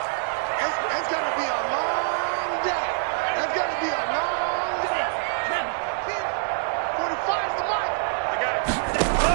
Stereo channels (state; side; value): silent; left; digital silence